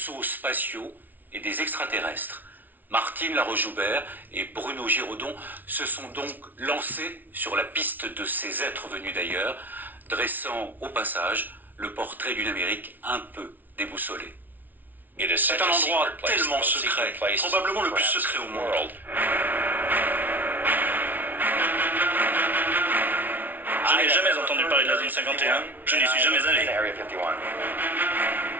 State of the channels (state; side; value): late; left; 0.083 ms